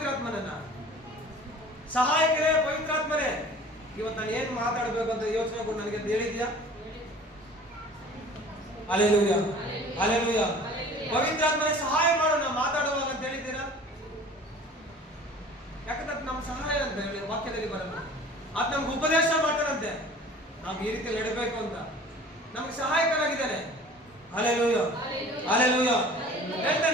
ಸಹಾಯಕರೇ ಪವಿತ್ರಾತ್ಮರೇ, ಇವತ್ತು ನಾನು ಏನ್ ಮಾತಾಡ್ಬೇಕಂತ ಯೋಚನೆ ಕೊಟ್ಟು ನನಗೆ ಹೇಳಿದ್ಯಾ? Hallelujah, hallelujah. ಪವಿತ್ರಾತ್ಮನೇ ಸಹಾಯ ಮಾಡು ನಾವು ಮಾತಾಡುವಾಗ ಅಂತ ಹೇಳಿದ್ದೀರಾ? ಯಾಕಂದ್ರೆ ನಮ್ಮ ಸಹಾಯ ಅಂತ ಹೇಳಿ ವಾಕ್ಯದಲ್ಲಿ ಬರಲ್ಲ. ಅದು ನಮ್ಗೆ ಉಪದೇಶ ಮಾಡ್ತಾರಂತೆ, ನಾವು ಈ ರೀತಿ ನಡಬೇಕು ಅಂತ ನಮ್ಗೆ ಸಹಾಯಕನಾಗಿದ್ದಾನೆ. Hallelujah, hallelujah.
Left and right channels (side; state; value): both; normal; correlation 0.45